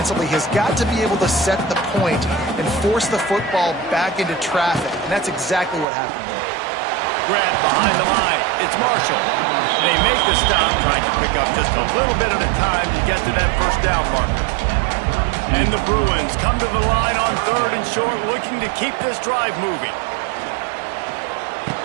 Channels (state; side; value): drops out; left; at 5.9 s